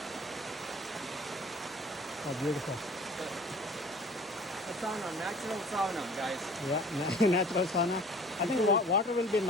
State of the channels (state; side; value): normal; both; correlation 0.48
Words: Oh, beautiful. A sauna, natural sauna, guys. Yeah, natural sauna. I think water will be